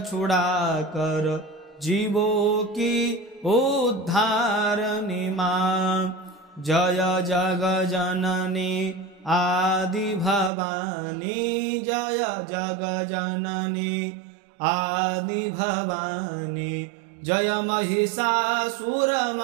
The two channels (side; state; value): left; drops out; at 10.5 s